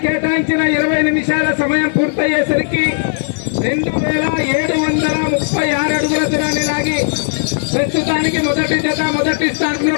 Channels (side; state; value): right; silent; 69 dB below the other